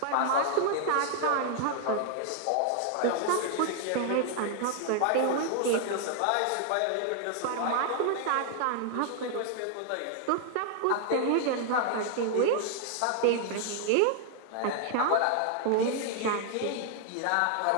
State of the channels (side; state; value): both; different; correlation 0.00